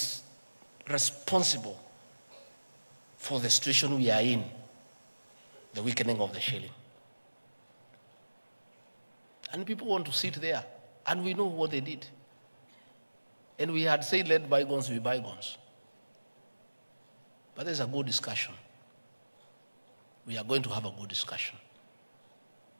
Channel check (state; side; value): inverted; both; correlation -1.00